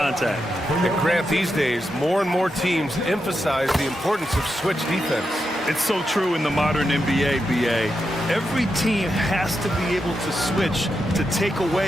And Grant, these days, more and more teams emphasize the importance of switch defense. It's so true in the modern NBA, BA. Every team has to be able to switch to take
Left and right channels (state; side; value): normal; both; correlation 0.86